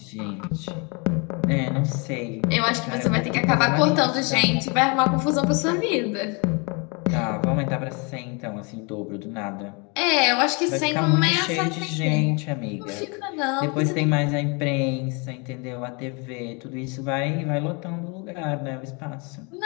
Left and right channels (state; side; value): quieter; right; 31.9 dB